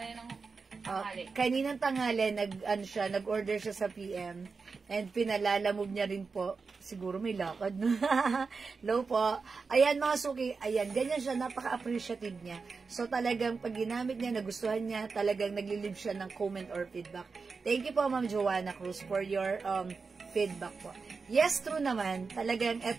Kaninang tanghali, nag-order siya sa PM. And pinalalamove niya rin po. Siguro may lakad. Low po. Ayan mga suki, ayan, ganyan siya, napaka-appreciative niya. So talagang pag ginamit niya, nagustuhan niya, talagang naglilib siya ng comment or feedback. Thank you po, Ma'am Joanna Cruz, for your feedback po. Yes, true naman. Talagang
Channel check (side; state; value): left; quieter; 4.7 dB